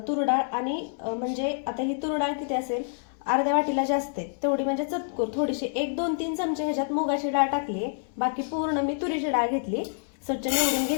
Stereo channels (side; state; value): right; silent; 58 dB below the other